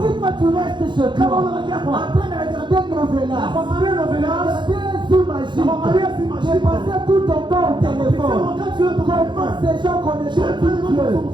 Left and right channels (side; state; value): left; late; 0.23 ms